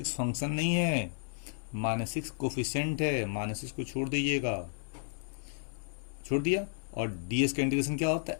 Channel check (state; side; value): silent; right; 56 dB below the other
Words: फंक्शन नहीं है, -6 कोफिशिएंट है, -6 को छोड़ दीजिएगा, छोड़ दिया, और ds का इंटीग्रेशन क्या होता है,